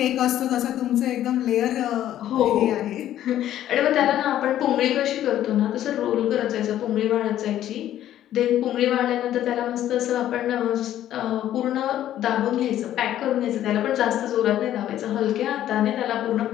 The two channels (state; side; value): quieter; right; 12.1 dB